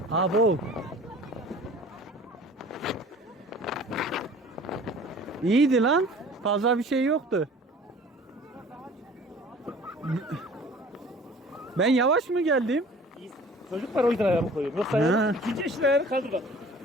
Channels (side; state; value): both; normal; correlation 0.47